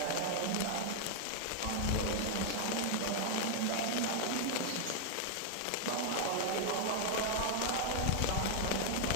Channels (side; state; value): both; different; correlation 0.00